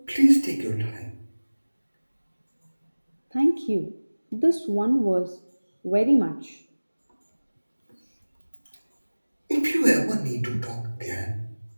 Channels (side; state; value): both; inverted; correlation -1.00